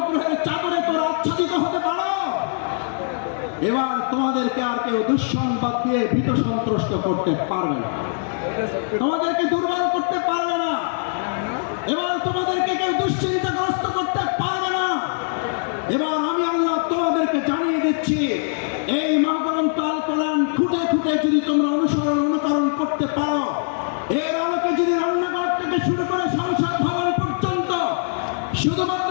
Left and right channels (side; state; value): right; silent; digital silence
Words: চাদরে তোমরা আচ্ছাদিত হতে পারো, এবার তোমাদেরকে আর কেউ দুঃসংবাদ দিয়ে ভীত সন্ত্রস্ত করতে পারবে না, তোমাদেরকে দুর্বল করতে পারবে না, এবার তোমাদেরকে কেউ দুশ্চিন্তাগ্রস্ত করতে পারবে না। এবার আমি আল্লাহ তোমাদেরকে জানিয়ে দিচ্ছি, এই মহাগ্রন্থ আল কোরআন খুঁটে খুঁটে যদি তোমরা অনুকরণ করতে পারো, এর আলোকে যদি রান্নাঘর থেকে শুরু করে সংসদ ভবন পর্যন্ত শুধুমাত্র